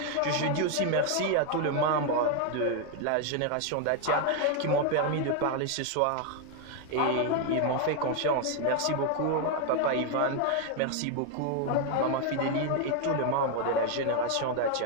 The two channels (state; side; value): different; both; correlation 0.01